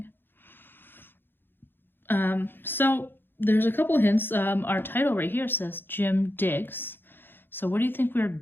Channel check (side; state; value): right; late; 0.10 ms